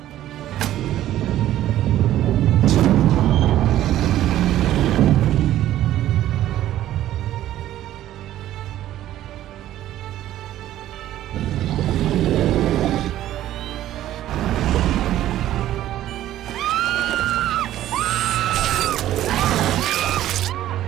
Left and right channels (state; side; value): quieter; left; 13.1 dB